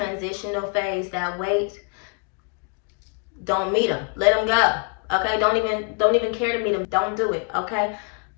phase, that wait. Don't meet them. Let them go. Okay? Don't even care to meet them. Don't do it. Okay?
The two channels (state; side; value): quieter; right; 38.4 dB